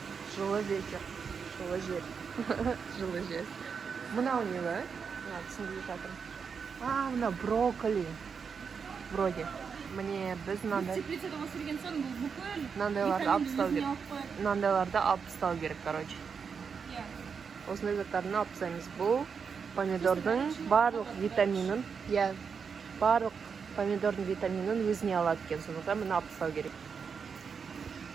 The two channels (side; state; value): left; quieter; 6.1 dB